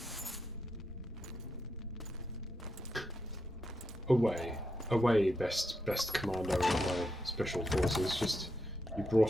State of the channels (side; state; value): both; normal; correlation 0.83